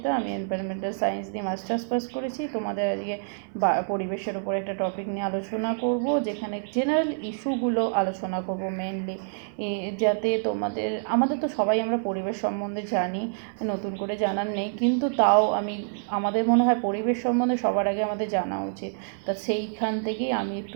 আমি এনভায়রনমেন্টাল সায়েন্স দিয়ে মাস্টার্স পাস করেছি। তোমাদের আজকে পরিবেশের উপর একটা টপিক নিয়ে আলোচনা করব, যেখানে জেনারেল ইস্যুগুলো আলোচনা করব মেনলি, যাতে আমাদের তো সবাই আমরা পরিবেশ সম্বন্ধে জানি, নতুন করে জানার নেই, কিন্তু তাও আমাদের মনে হয় পরিবেশ সম্বন্ধে সবার আগে আমাদের জানা উচিত। তা সেইখান থেকেই আমি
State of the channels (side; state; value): left; silent; 57 dB below the other